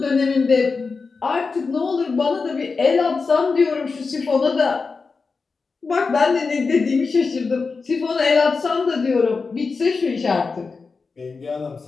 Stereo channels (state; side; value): quieter; right; 4.5 dB